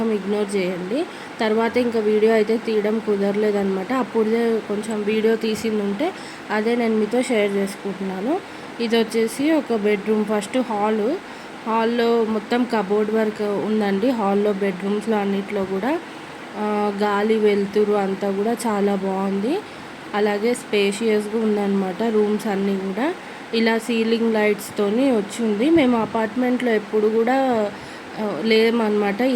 ఇగ్నోర్ చేయండి. తర్వాత ఇంకా వీడియో అయితే తీయడం కుదరలేదనమాట. అప్పుడే కొంచెం వీడియో తీసిందుంటే అదే నేను మీతో షేర్ చేసుకుంటున్నాను. ఇదొచ్చేసి ఒక బెడ్రూమ్. ఫస్ట్ హాల్‌లో మొత్తం కబోర్డ్ వర్క్ ఉందండి. హాల్‌లో బెడ్రూమ్స్‌లో అన్నిట్లో కూడా గాలి, వెలుతురు అంతా కూడా చాలా బాగుంది. అలాగే స్పేషియస్‌గా ఉందన్నమాట రూమ్స్ అన్నీ కూడా. ఇలా సీలింగ్ లైట్స్తోని వచ్చింది. మేము అపార్ట్మెంట్లో ఎప్పుడు కూడా లేమన్నమాట.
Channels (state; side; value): identical; both; correlation 1.00